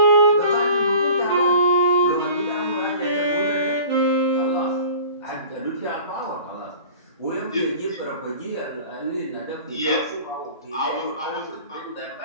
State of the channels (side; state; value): both; inverted; correlation -0.43